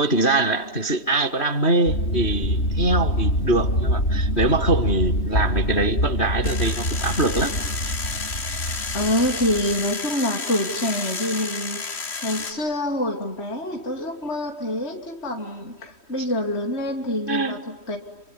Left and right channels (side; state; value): right; late; 3.1 ms